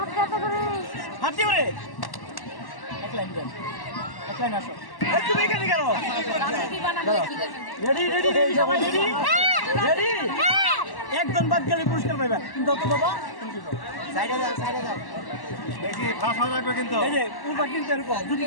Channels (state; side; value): late; right; 1.1 ms